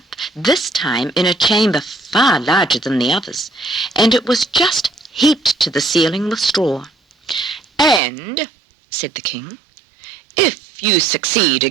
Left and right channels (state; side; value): drops out; left; at 8.0 s